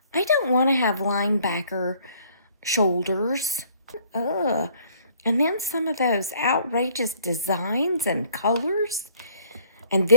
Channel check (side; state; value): both; inverted; correlation -0.60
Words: I don't want to have linebacker shoulders. Ugh. And then some of those outrageous designs and colors. And